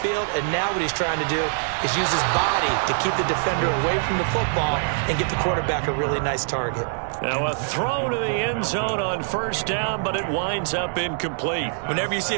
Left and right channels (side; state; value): left; silent; digital silence